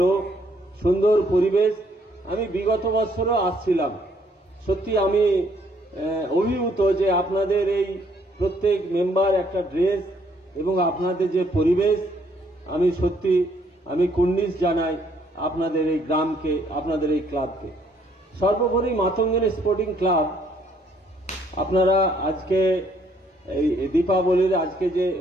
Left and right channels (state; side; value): normal; both; correlation 0.67